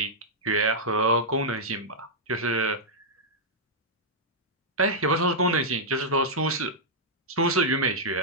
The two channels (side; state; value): both; normal; correlation -0.08